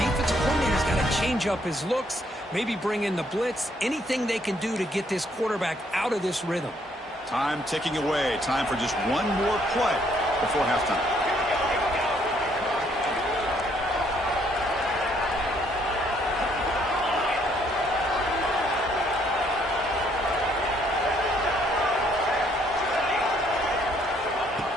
coordinator's got to change up his looks, maybe bring in the blitz, anything they can do to get this quarterback out of this rhythm. Time ticking away. Time for just one more play before halftime.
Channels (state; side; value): normal; both; correlation 0.68